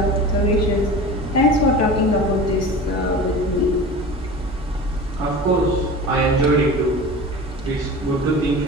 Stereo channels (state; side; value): normal; both; correlation 0.35